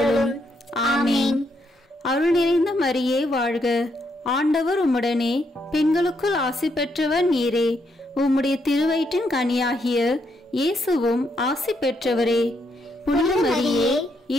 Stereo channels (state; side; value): normal; both; correlation 0.77